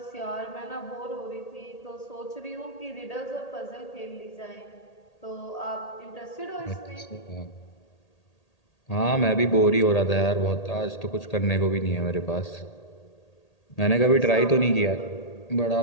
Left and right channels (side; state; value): right; late; 1.8 ms